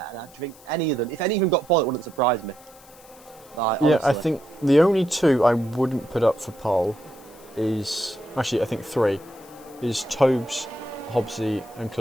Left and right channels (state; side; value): noise; left; hiss, 24 dB below the sound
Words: and I think if any of them got pole, it wouldn't surprise me. Like, yeah, I think the only 2 I wouldn't put up for pole is actually I think 3 is Tobes, Hobbsy, and